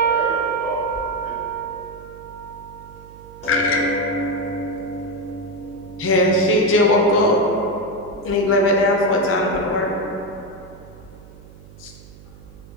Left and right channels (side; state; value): right; noise; hum, 20 dB below the sound